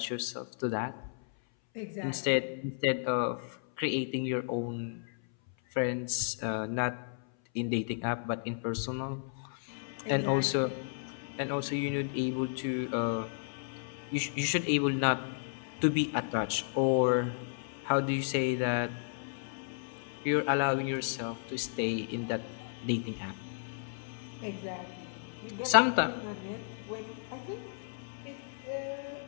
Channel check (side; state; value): right; silent; 56 dB below the other